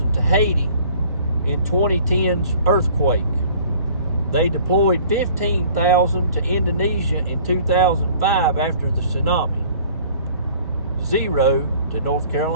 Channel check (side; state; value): both; inverted; correlation -0.52